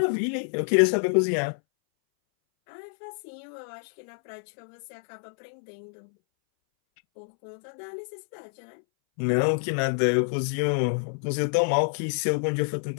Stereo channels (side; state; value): right; silent; 60 dB below the other